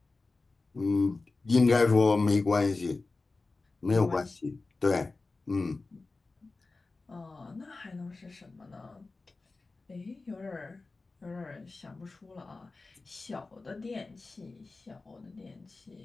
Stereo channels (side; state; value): right; quieter; 3.6 dB